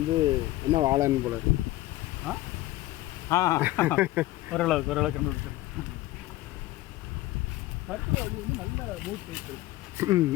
என்ன வாழைன்னு போல இருக்கு. ஓரளவுக்கு கண்டுபிடிச்சிருக்கோம். கருத்து அது வந்து நல்ல மூட் சைக்கிள்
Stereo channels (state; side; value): quieter; right; 17.0 dB